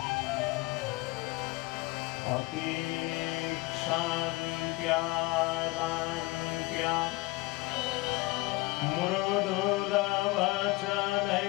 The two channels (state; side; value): quieter; right; 22.2 dB